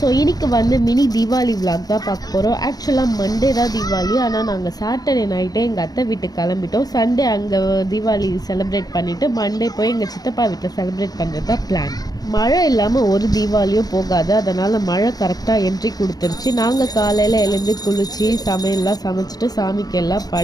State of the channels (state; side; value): late; right; 0.19 ms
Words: So இன்னைக்கு வந்து மினி தீபாவளி விலாக் தான் பார்க்க போகிறோம். ஆக்சுவலாக மண்டே தான் தீபாவளி, ஆனால் நாங்கள் சாட்டர்டே நைட்டே எங்கள் அத்தை வீட்டுக்கு கிளம்பிட்டோம். சண்டே அங்கே தீபாவளி செலிப்ரேட் பண்ணிவிட்டு மண்டே போய் எங்கள் சித்தப்பா வீட்டில் செலிப்ரேட் பண்ணுறது தான் பிளான். மழை இல்லாமல் ஒரு தீபாவளியும் போகாது, அதனால் மழை கரெக்டாக என்ட்ரி கொடுத்துருச்சு. நாங்கள் காலையில் எழுந்து குளித்து சமையல்லாம் சமைச்சிட்டு சாமிக்கு எல்லாம்